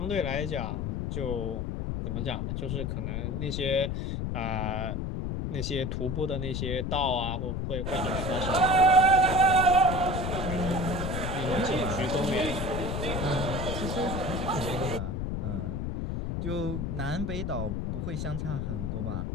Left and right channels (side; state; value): left; noise; rumble, 2 dB below the sound